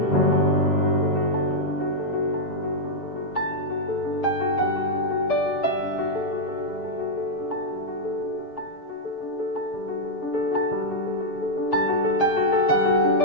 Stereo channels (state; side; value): late; right; 7.4 ms